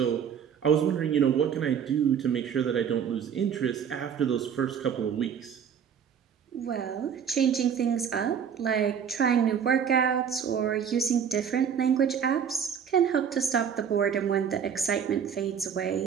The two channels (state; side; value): quieter; left; 7.8 dB